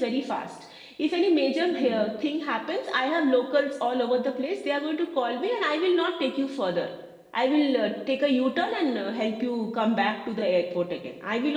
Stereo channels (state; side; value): identical; both; correlation 1.00